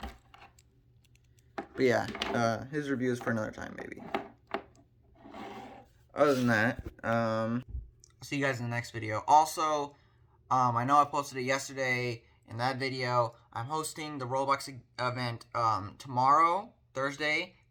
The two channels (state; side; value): identical; both; correlation 1.00